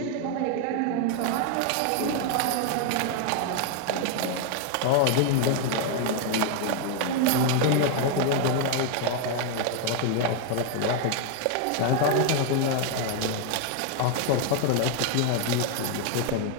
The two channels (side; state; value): both; different; correlation 0.00